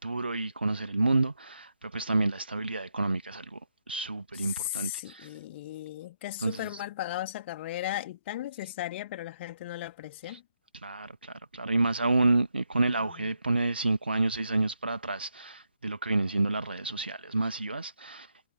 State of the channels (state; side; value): inverted; both; correlation -0.82